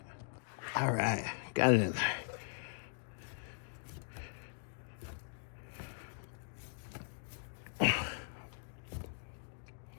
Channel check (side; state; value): right; silent; digital silence